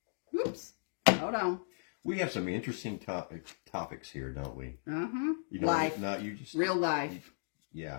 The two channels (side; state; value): right; silent; digital silence